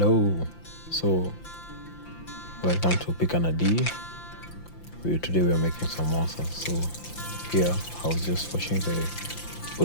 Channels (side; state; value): right; late; 5.8 ms